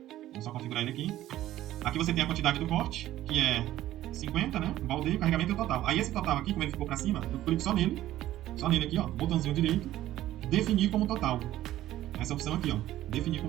Vamos só configurar ele aqui. Aqui você tem a quantidade do corte, que é 50, né? O baldeio, carregamento e o total. Aí esse total aqui, como ele ficou pra cima, eu clico só nele aqui, ó, botãozinho direito, definir como total. Essa opção aqui, ó, definir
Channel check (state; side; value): quieter; left; 14.1 dB